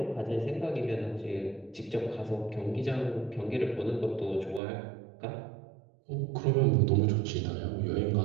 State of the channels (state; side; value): drops out; left; at 4.6 s